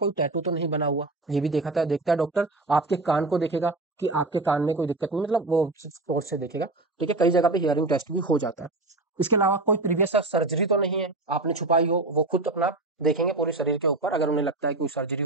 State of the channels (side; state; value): left; quieter; 3.1 dB